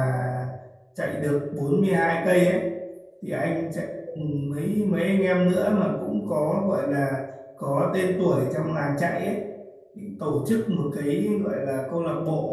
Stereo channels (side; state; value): both; identical; correlation 1.00